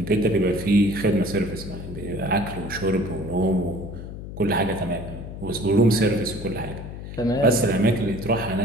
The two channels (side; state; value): left; noise; hum, 10 dB below the sound